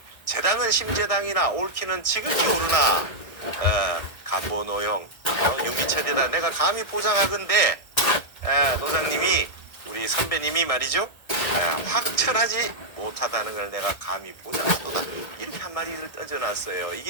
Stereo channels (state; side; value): late; right; 1.8 ms